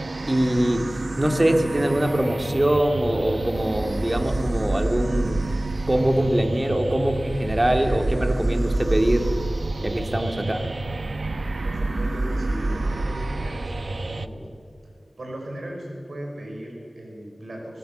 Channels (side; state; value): both; normal; correlation 0.98